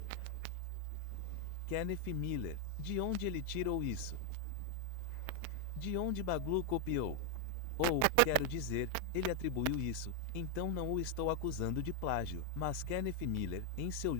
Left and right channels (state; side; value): different; both; correlation 0.00